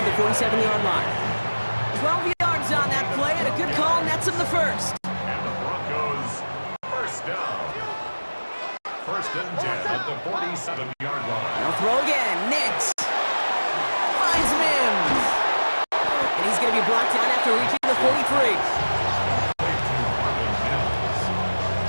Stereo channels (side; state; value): both; inverted; correlation -1.00